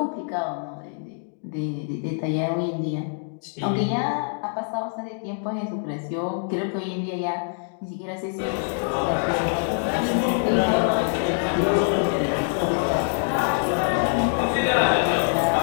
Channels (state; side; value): silent; right; digital silence